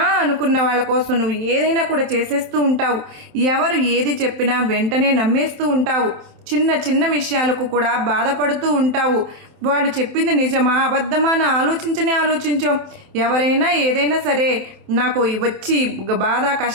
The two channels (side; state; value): left; late; 27 ms